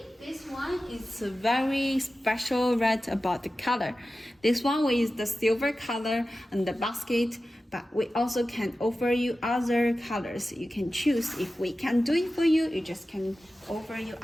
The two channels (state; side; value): normal; both; correlation 0.94